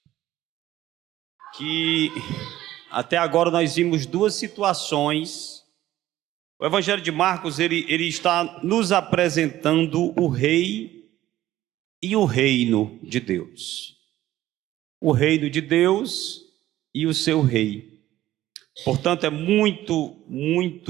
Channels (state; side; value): quieter; left; 14.3 dB